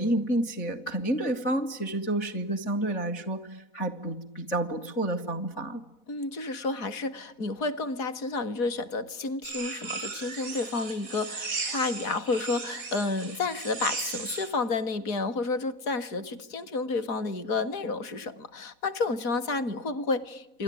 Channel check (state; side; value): late; right; 4.1 ms